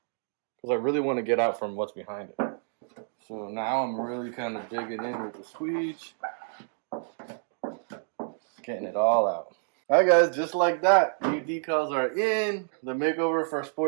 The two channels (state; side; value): silent; left; digital silence